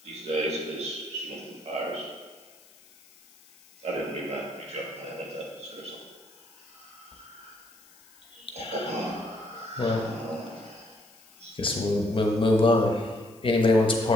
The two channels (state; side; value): noise; left; hiss, 26 dB below the sound